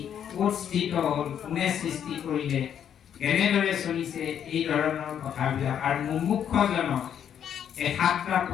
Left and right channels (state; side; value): quieter; right; 9.1 dB